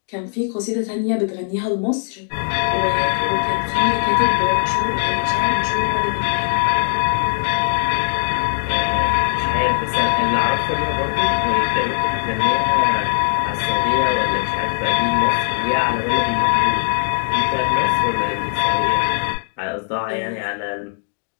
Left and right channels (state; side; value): silent; right; digital silence